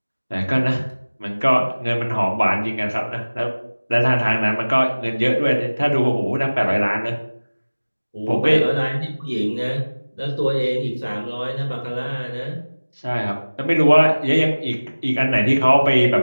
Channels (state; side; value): inverted; both; correlation -1.00